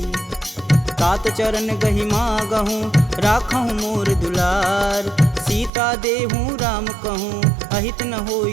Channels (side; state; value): left; drops out; at 5.7 s